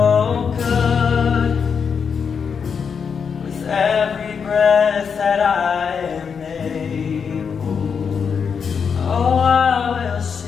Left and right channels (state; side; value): quieter; right; 6.4 dB